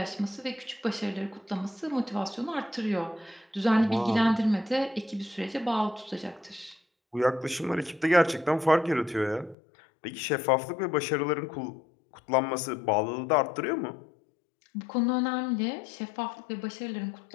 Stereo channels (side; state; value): right; drops out; at 9.6 s